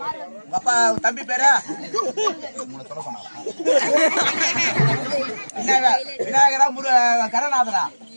உங்க அப்பா தம்பி பேரா? சொல்ல சொன்னாரா? விநாயகரா கணநாதரா?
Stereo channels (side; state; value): both; inverted; correlation -1.00